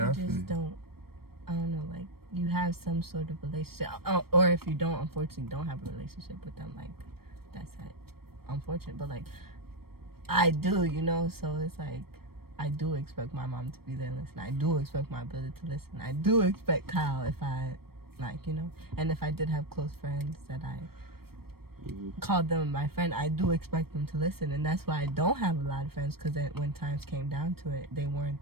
I You feel just don't. I don't know. Like, you have some sort of relationship, or if you don't, unfortunately, don't have a relationship with them. Like, that's it. Unfortunate, but like, I do, you know. So it's like, I do expect my mom to be there and listen. I do expect my brother to listen. I do expect Kyle if I, like, you know. And if I did have close friends that I called them my friend, I do expect them to listen. And that's why I don't have a lot of friends, because when times came down to it, they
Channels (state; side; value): late; left; 0.95 ms